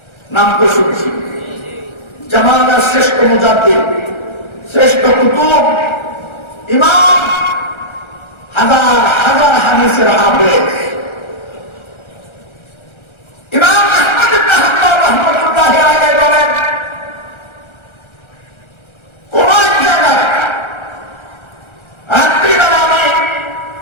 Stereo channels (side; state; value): right; late; 1.3 ms